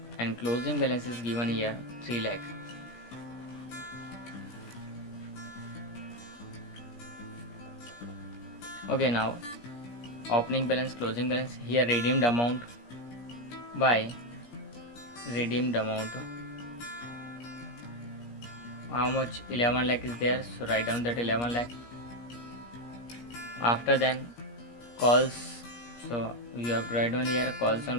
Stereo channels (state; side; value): late; right; 17 ms